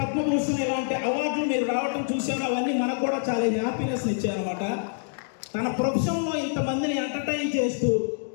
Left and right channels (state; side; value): silent; right; digital silence